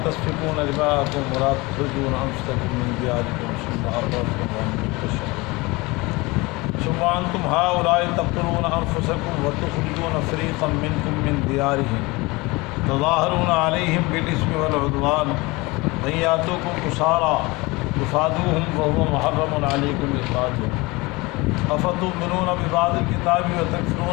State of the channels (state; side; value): quieter; right; 23.6 dB